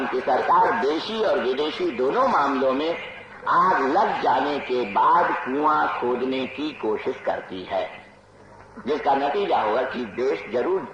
की सरकार देशी और विदेशी दोनों मामलों में आग लग जाने के बाद कुआं खोदने की कोशिश करती है, जिसका नतीजा होगा कि देश जरूर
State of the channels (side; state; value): both; identical; correlation 1.00